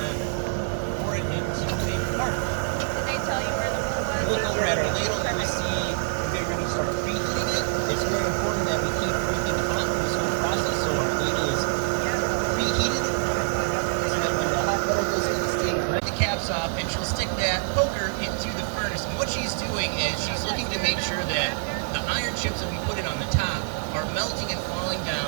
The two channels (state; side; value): silent; left; 61 dB below the other